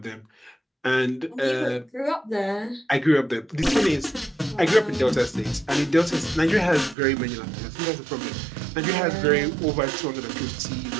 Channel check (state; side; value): drops out; left; at 7.0 s